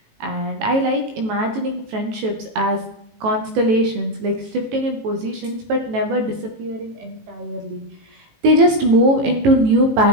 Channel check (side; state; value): left; late; 18 ms